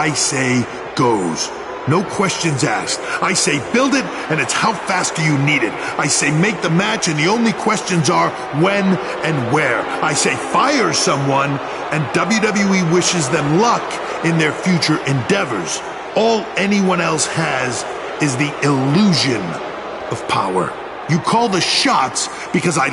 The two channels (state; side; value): identical; both; correlation 1.00